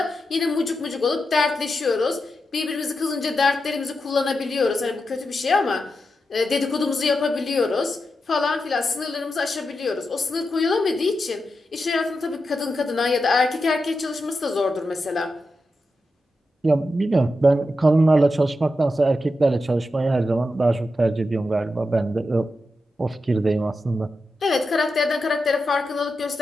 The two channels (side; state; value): both; normal; correlation 0.88